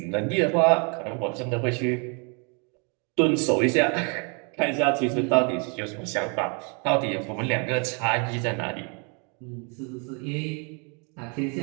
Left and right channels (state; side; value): quieter; left; 35.6 dB